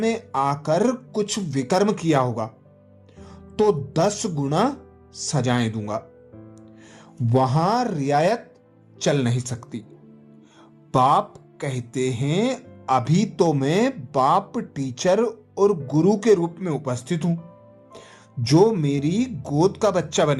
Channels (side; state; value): both; identical; correlation 1.00